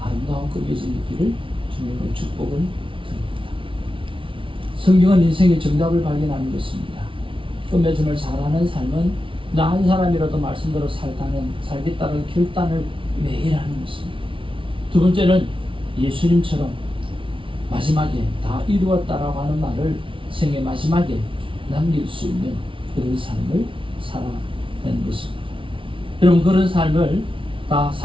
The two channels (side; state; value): left; late; 0.25 ms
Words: 끝맺음의 길을 주님의 축복을 드립니다. 성경은 인생의 정답을 발견하는 것입니다. 끝맺음을 잘하는 삶은 나 한 사람이라도 말씀대로 살겠다는 결단을 매일 하는 것입니다. 두 번째는 예수님처럼 마지막에 다 이루었다라고 하는 말을 생의 마지막에 남길 수 있는 그런 삶을 살아내는 것입니다. 여러분 그런 삶을 다